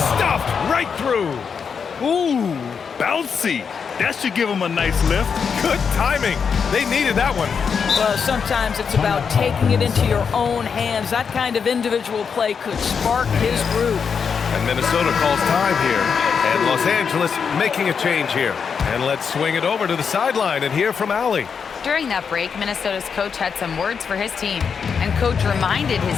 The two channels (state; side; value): quieter; right; 6.3 dB